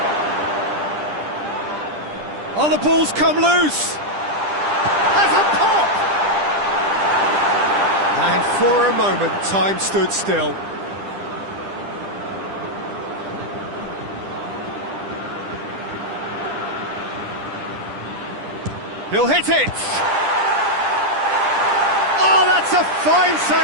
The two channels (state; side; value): late; left; 10 ms